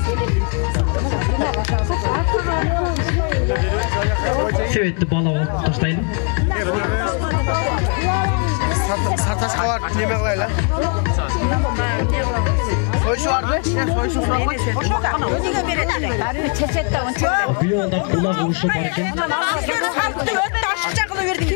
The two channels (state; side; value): quieter; right; 38.1 dB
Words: Себетти бала болуп таштайлы. Сарташқа бар, неме қылайлы? Büyüyorlar kulağı uşu barken.